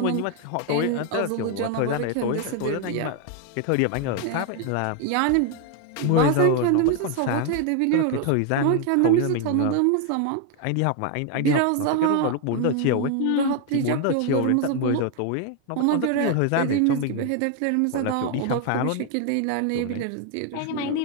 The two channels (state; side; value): different; both; correlation 0.01